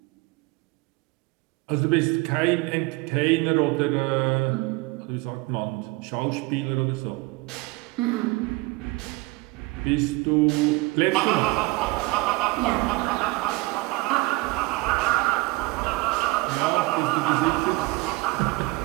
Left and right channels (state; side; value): quieter; left; 22.9 dB